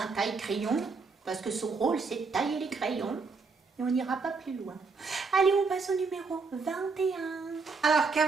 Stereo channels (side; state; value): left; quieter; 4.5 dB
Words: taille-crayon, parce que son rôle, c'est de tailler les crayons. Et on n'ira pas plus loin. Allez, on passe au numéro 21. Alors,